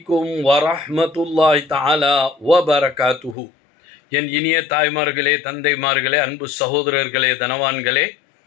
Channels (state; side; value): drops out; right; at 3.4 s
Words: வரஹ்மத்துல்லாஹி தஆலா வபரகாத்துஹு. என் இனிய தாய்மார்களே, தந்தைமார்களே, அன்பு சகோதரர்களே, தனவான்களே,